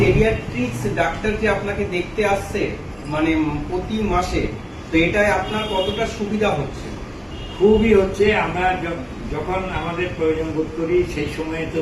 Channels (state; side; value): identical; both; correlation 1.00